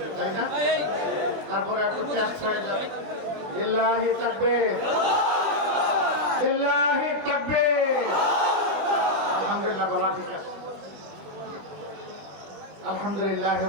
তাই না? তারপরে একটু চেষ্টা হয়ে যাবে লিল্লাহি তাকবীর, লিল্লাহি তাকবীর। আলহামদুলিল্লাহ, বলা ঠিক আছে। আলহামদুলিল্লাহ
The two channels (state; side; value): late; left; 20 ms